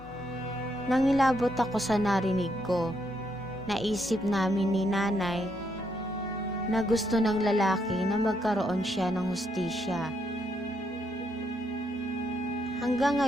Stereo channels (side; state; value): both; normal; correlation 0.76